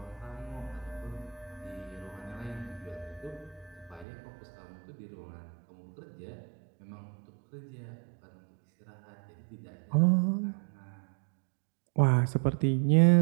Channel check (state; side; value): drops out; left; at 4.0 s